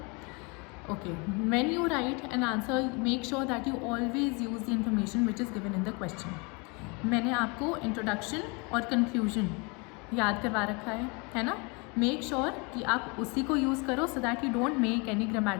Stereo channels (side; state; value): right; quieter; 30.4 dB